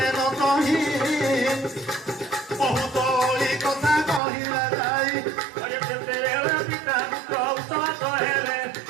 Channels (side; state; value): left; drops out; at 4.2 s